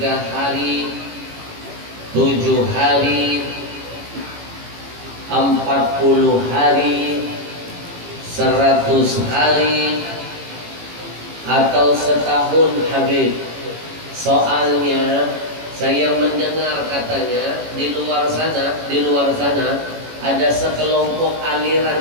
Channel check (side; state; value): left; late; 18 ms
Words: hari, 7 hari, 40 hari, 100 hari, atau setahun Habib? Soalnya saya mendengar katanya di luar sana ada sekelompok